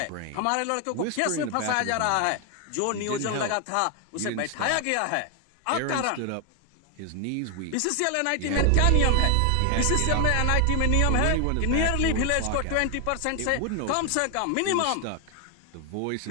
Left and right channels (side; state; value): both; different; correlation 0.00